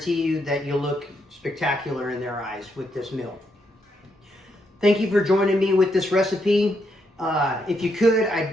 you that you'll look spectacular in their eyes with this meal. Thank you for joining me with this recipe. If you could,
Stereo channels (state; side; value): normal; both; correlation 0.78